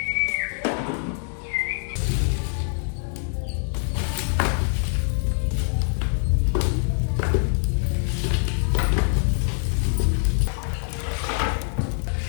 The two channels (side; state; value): right; silent; 61 dB below the other